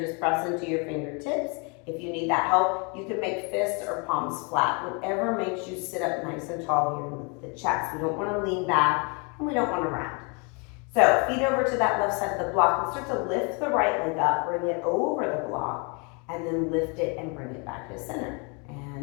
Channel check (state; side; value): quieter; right; 33.6 dB